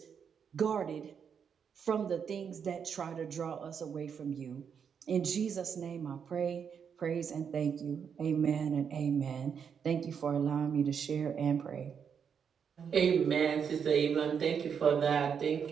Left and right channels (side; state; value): left; quieter; 7.1 dB